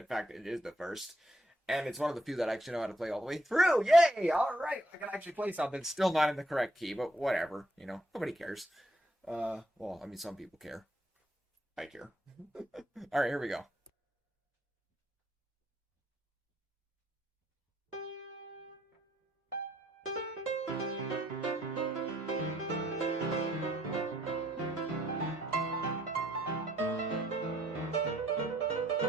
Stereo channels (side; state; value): both; normal; correlation 0.71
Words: fact, it is the first. And it's one of the few that I actually know how to play all the way through. Yay! All right, I can actually play something. Still not in the correct key, but whatever. You know, nobody cares. Well, I mean, some people care. I care. All right, here we go.